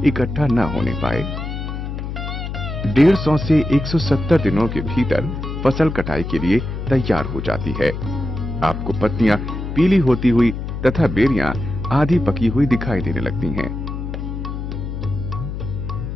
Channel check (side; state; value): left; noise; hum, 6 dB below the sound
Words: इकट्ठा न होने पाए। 150 से 170 दिनों के भीतर फसल कटाई के लिए तैयार हो जाती है। आपको पत्तियां पीली होती हुई तथा बेरियां आधी पकी हुई दिखाई देने लगती हैं।